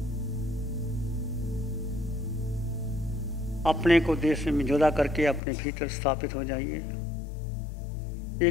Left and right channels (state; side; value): drops out; right; at 5.4 s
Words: अपने को देह से जुदा करके अपने भीतर स्थापित हो जाइए।